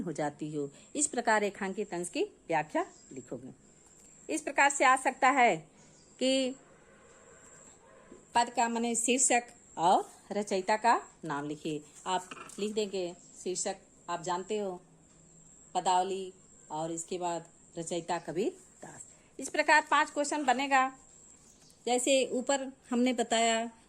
हो जाती हो। इस प्रकार रेखांकित अंश की व्याख्या लिखोगे। इस प्रकार से आ सकता है कि पद का माने शीर्षक और रचयिता का नाम लिखिए। आप लिख देंगे शीर्षक, आप जानते हो पदावली, और इसके बाद रचयिता कबीर दास। इस प्रकार 5 क्वेश्चन बनेगा। जैसे ऊपर हमने बताया,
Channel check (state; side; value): identical; both; correlation 1.00